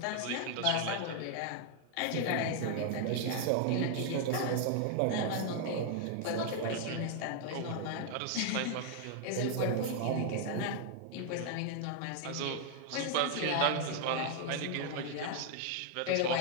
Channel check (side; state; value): both; different; correlation 0.00